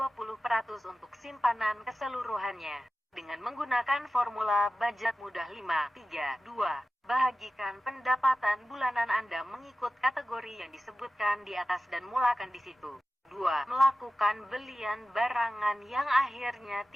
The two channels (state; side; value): normal; both; correlation 0.94